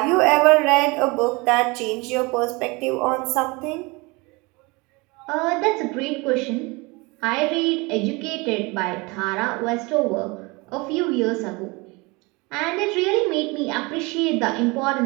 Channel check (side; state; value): left; quieter; 25.9 dB